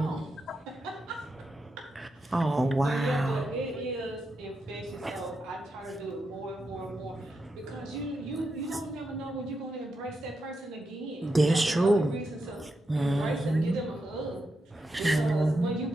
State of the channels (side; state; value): both; normal; correlation 0.85